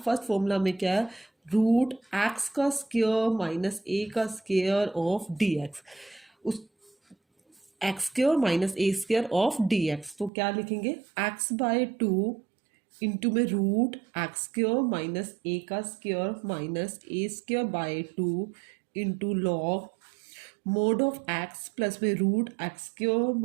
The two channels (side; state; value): left; drops out; at 10.3 s